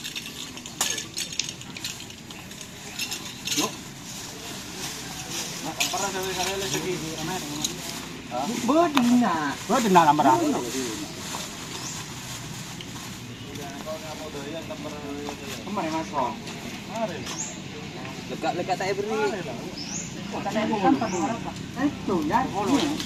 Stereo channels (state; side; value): identical; both; correlation 1.00